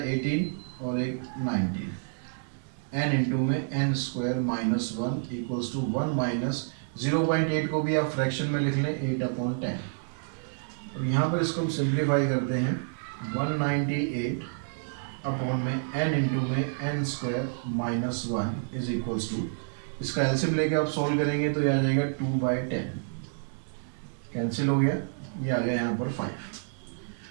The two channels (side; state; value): left; silent; 58 dB below the other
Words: 18 और एक 19, n इंटू में n square minus 1 equals to 1 minus 0.8 को भी आप फ्रैक्शन में लिख लें 8/10। अब यहाँ पर इसको हम सिंप्लीफाई करते हैं 198 अपॉन में n इंटू में n square minus 1 is equals to, इसका एलसीएम लेके आप सॉल्व करेंगे तो ये आ जाएगा 2/10, कैंसिल हो गया, ये आ गया यहाँ पर 5।